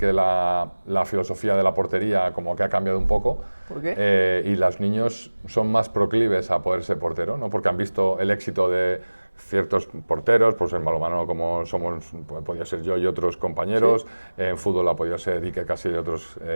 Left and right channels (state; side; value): inverted; both; correlation -1.00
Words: la filosofía de la portería como que ha cambiado un poco. ¿Por qué? Y los niños son más proclives a poder ser portero, ¿no? Porque han visto el éxito de ciertos porteros, pues en balonmano como somos, podía ser yo y otros compañeros, sí. En fútbol ha podido ser Iker Casillas y otros